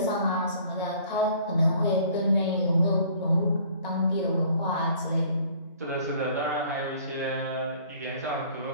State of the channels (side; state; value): both; inverted; correlation -0.54